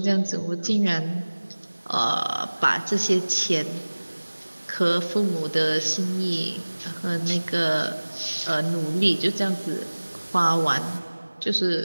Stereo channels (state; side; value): inverted; both; correlation -1.00